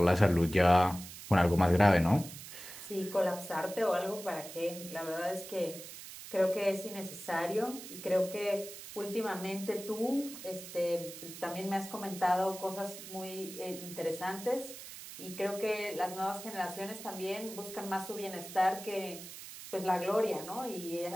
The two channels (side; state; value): right; noise; hiss, 13 dB below the sound